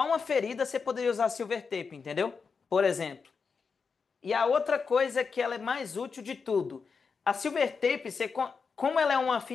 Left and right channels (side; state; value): right; quieter; 5.4 dB